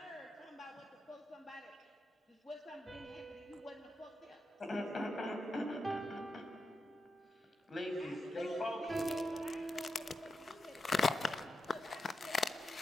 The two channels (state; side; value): normal; both; correlation 0.87